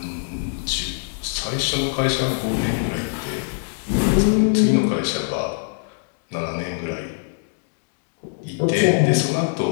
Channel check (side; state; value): right; silent; digital silence